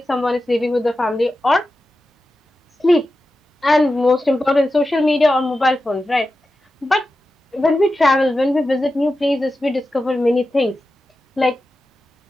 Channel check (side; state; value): both; normal; correlation 0.92